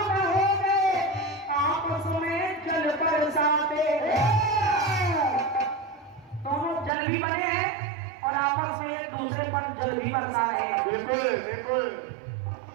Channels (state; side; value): drops out; left; at 6.9 s